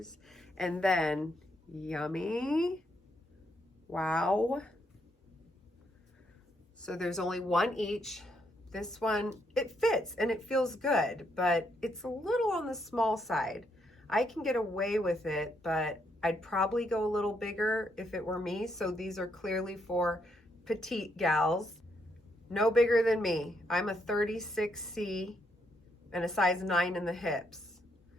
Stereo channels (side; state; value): both; normal; correlation 0.76